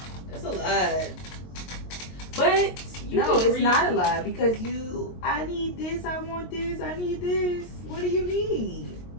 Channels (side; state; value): right; late; 22 ms